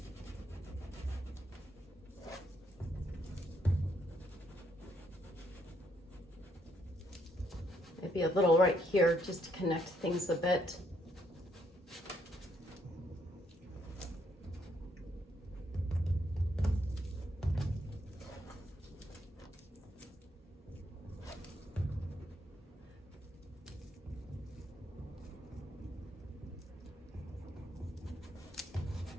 Maybe a little right here just to connect things a bit.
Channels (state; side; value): normal; both; correlation 0.73